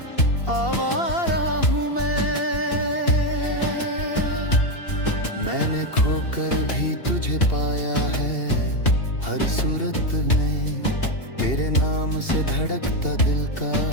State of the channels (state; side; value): late; right; 2.7 ms